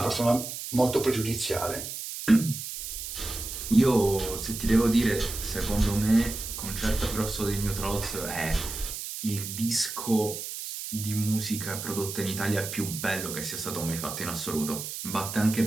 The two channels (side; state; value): right; noise; hiss, 7 dB below the sound